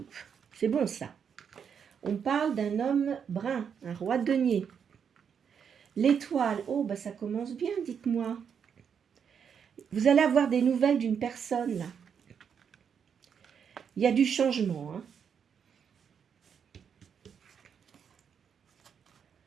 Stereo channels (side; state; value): left; quieter; 7.3 dB